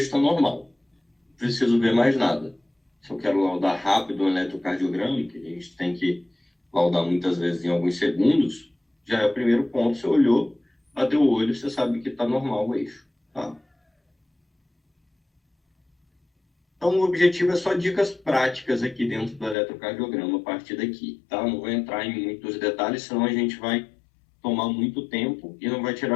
está normal. Não preciso ver mais nada. Se eu quero laudar rápido um eletrocardiograma, que a gente tem que laudar muitas vezes em alguns segundos, já é o primeiro ponto. Você olhou, bateu o olho, você sabe que está normal o eixo. Tá? Então, o objetivo é só dicas práticas aqui dentro do eletrocardiograma a partir daqui. Tá? Não vou entrar em muitos detalhes, senão a gente vai tomar muito tempo e não vai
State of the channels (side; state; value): right; drops out; at 19.6 s